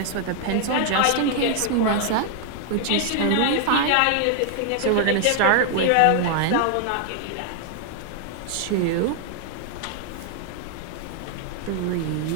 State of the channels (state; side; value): different; both; correlation 0.00